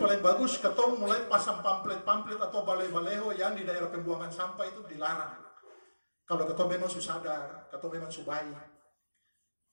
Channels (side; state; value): both; inverted; correlation -1.00